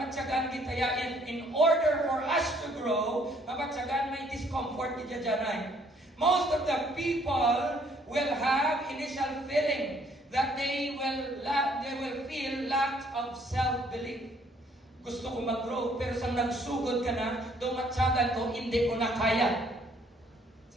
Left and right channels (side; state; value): both; normal; correlation 0.64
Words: kita in order for us to grow, mapatsagan may discomfort kita dyan. Most of the people will have initial feeling that they will feel lack of self-belief. Gusto ko mag-grow, pero sa nagsugod ka na, tumatsagan ko, hindi ko na kaya.